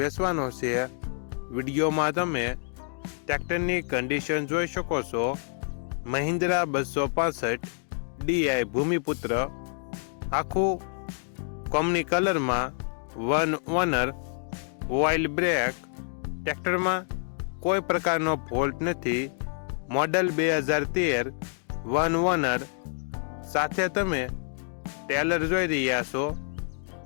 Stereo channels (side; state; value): right; silent; 59 dB below the other